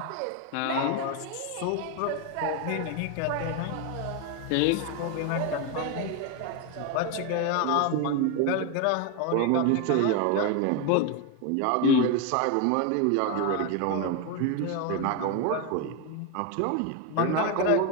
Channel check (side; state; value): both; different; correlation 0.02